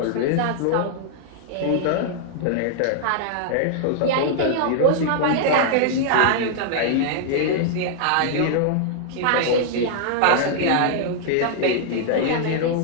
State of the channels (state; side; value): different; both; correlation -0.01